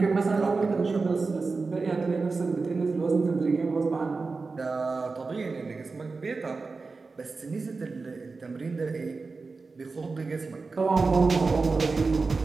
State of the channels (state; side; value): quieter; left; 4.1 dB